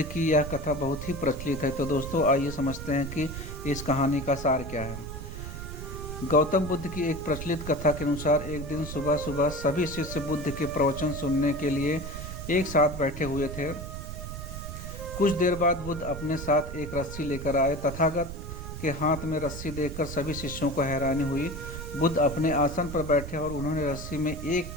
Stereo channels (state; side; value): noise; right; rumble, 8 dB below the sound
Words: की यह कथा बहुत ही प्रचलित है। तो दोस्तों आइए समझते हैं कि इस कहानी का सार क्या है। गौतम बुद्ध की एक प्रचलित कथा के अनुसार एक दिन सुबह सुबह सभी शिष्य बुद्ध के प्रवचन सुनने के लिए एक साथ बैठे हुए थे। कुछ देर बाद बुद्ध अपने साथ एक रस्सी लेकर आए। तथागत के हाथ में रस्सी देखकर सभी शिष्यों को हैरानी हुई। बुद्ध अपने आसन पर बैठे और उन्होंने रस्सी में एक